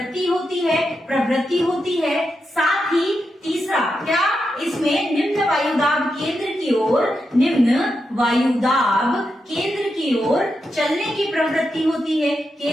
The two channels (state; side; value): normal; both; correlation 0.86